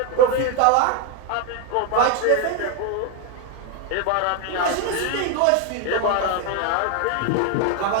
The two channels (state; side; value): different; both; correlation 0.01